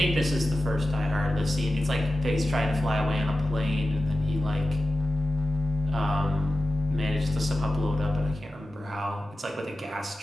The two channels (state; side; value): normal; both; correlation 0.94